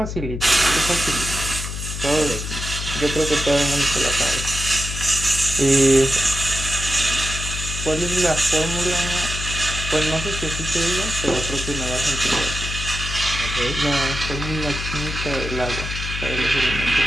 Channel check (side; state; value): left; noise; hum, 6 dB below the sound